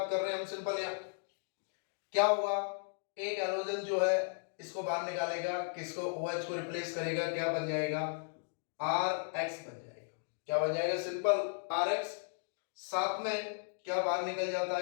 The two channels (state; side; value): silent; right; digital silence